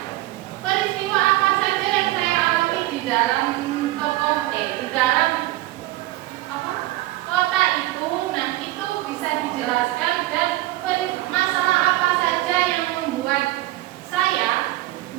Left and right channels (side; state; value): left; quieter; 17.3 dB